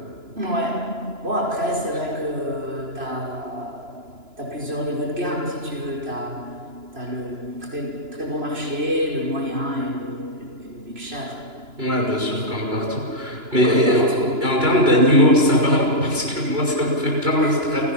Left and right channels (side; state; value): left; late; 2.9 ms